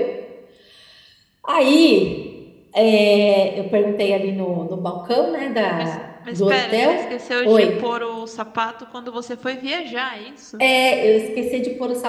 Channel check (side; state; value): both; identical; correlation 1.00